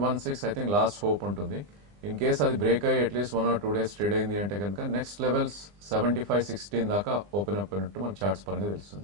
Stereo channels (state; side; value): late; left; 20 ms